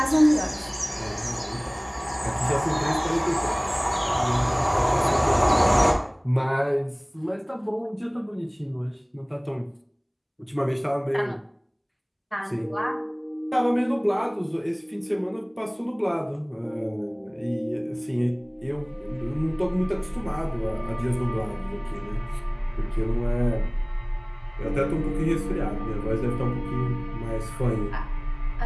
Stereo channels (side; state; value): both; identical; correlation 1.00